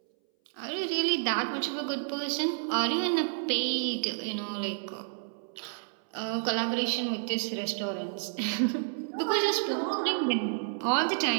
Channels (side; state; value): left; silent; 58 dB below the other